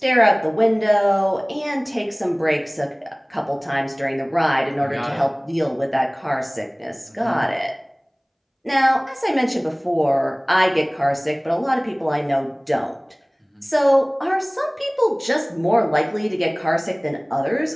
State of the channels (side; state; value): both; identical; correlation 1.00